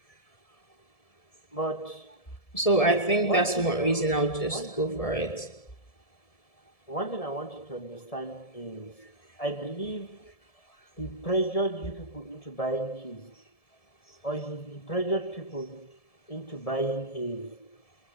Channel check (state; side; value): late; right; 1.7 ms